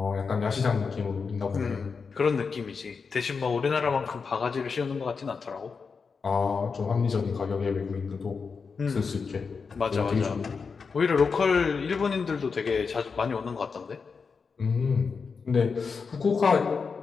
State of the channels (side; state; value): right; quieter; 5.2 dB